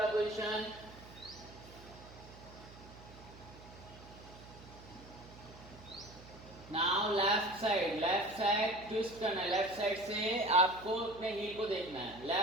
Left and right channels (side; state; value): right; noise; hum, 18 dB below the sound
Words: position, now left side twist करना है, लेफ्ट साइड से आपको अपने हील को देखना है,